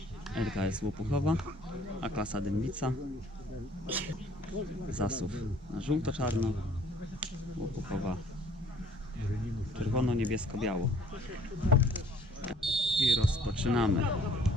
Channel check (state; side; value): normal; both; correlation 0.57